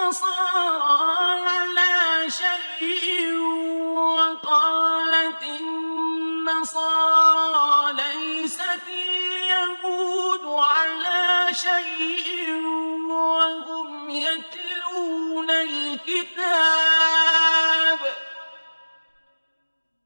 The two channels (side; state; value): both; inverted; correlation -1.00